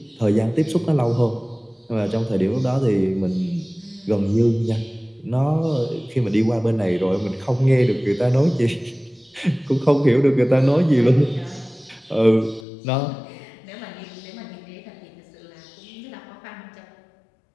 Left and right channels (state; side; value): drops out; right; at 12.7 s